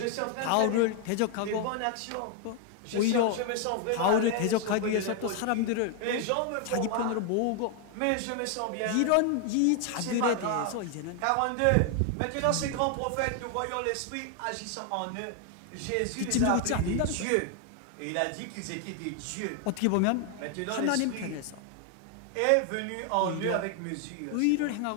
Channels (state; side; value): different; both; correlation 0.00